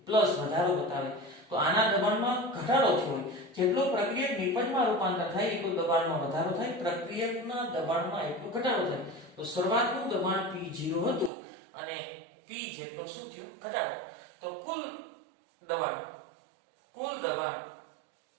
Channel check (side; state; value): left; drops out; at 11.3 s